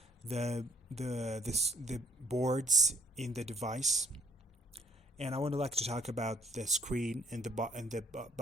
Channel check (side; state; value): both; normal; correlation 0.63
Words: the boards in the device, and I would like to talk about the screen and the